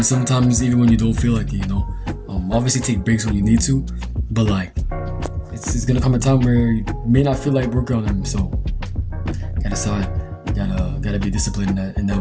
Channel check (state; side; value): identical; both; correlation 1.00